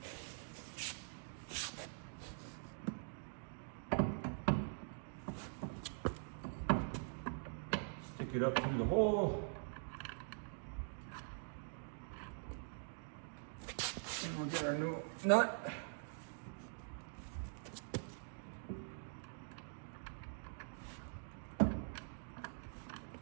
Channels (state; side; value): silent; left; digital silence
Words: Stick it up through the hole. And we'll get our new nut.